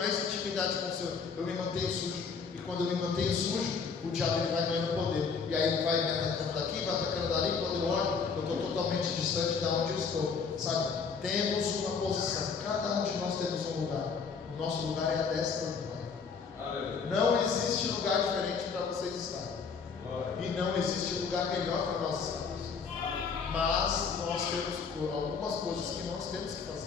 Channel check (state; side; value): quieter; right; 5.6 dB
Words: intimidade com o Senhor, eu me mantenho sujo. E quando eu me mantenho sujo, o diabo ele vai ganhando poder. E aí ele vai me atacando daqui, vai atacando dali. Quando eu olho, eu estou totalmente distante de onde eu estou. Sabe? Temos uma posição. Cada um de nós temos um lugar. O nosso lugar é a destra do Pai. Não existe lugar diferente para vocês estarem. E não existe lugar melhor para nós estarmos. Mas nós temos algumas coisas que nós temos que